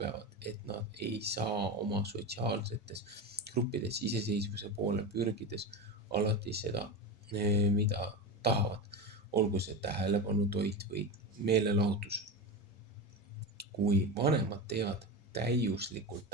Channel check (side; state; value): both; normal; correlation 0.21